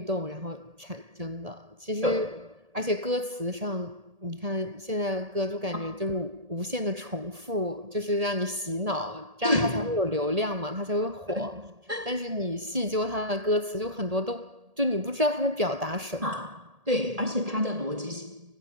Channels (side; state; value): left; late; 1.8 ms